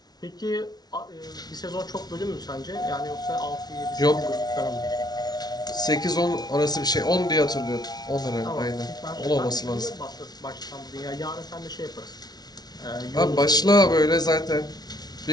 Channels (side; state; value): right; late; 0.19 ms